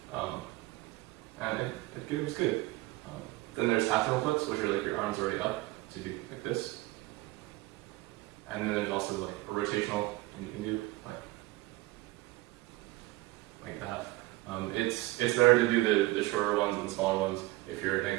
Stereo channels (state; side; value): quieter; left; 19.4 dB